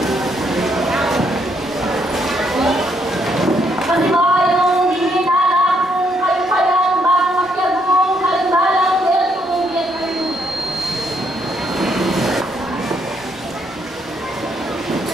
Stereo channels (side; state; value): both; normal; correlation 0.73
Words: Kasi ba yung dinilala kung kayo kayang bang makyagong kalimbalang welcome kayo.